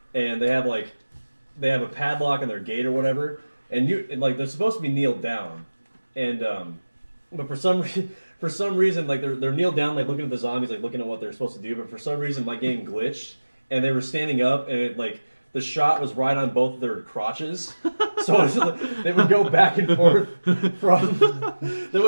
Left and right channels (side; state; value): both; inverted; correlation -1.00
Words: and they have a padlock on their gate or whatever, and they're supposed to be kneeled down, and but for some reason like they're kneeled down like looking at the zombies, like looking at what they're supposed to do, but for some reason my game glitched and they were standing up and it like the shot was right on both of their crotches, so they would go back and forth